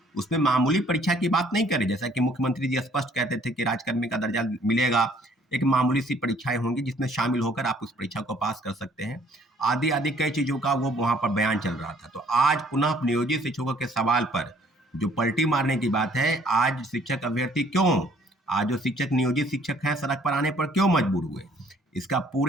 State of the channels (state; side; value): normal; both; correlation 0.60